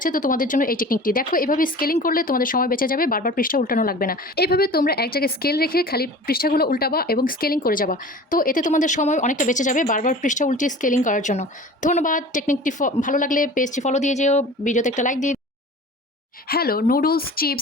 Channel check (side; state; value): both; normal; correlation 0.40